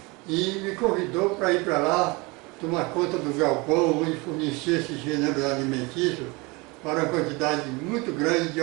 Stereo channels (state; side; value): quieter; left; 25.9 dB